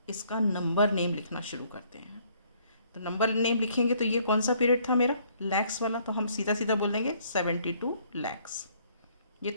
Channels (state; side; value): inverted; both; correlation -0.64